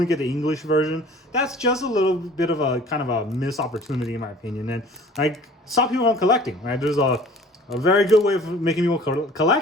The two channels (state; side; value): normal; both; correlation 0.48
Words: get the English version? That's just a little bit of a kind of a missed opportunity in my opinion, and like stop people from collecting. Right? There's a very good way of making people